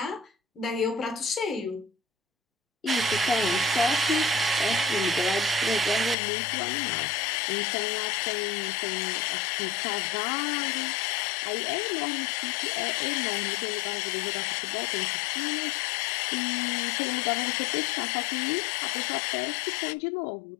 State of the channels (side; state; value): right; drops out; at 6.2 s